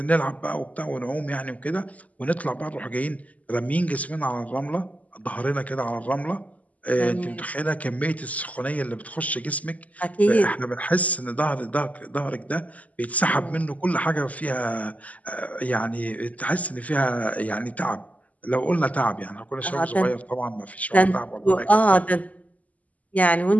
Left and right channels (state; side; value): late; right; 0.073 ms